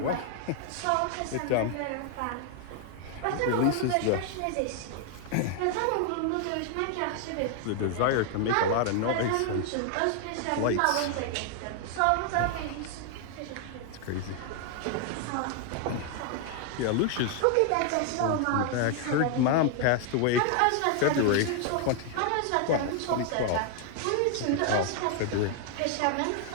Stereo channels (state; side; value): different; both; correlation 0.00